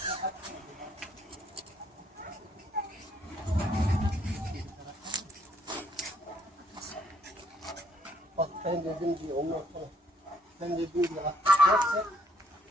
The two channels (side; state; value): both; normal; correlation 0.67